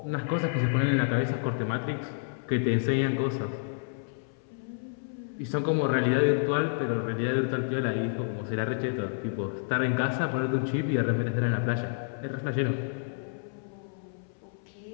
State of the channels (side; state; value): right; silent; 58 dB below the other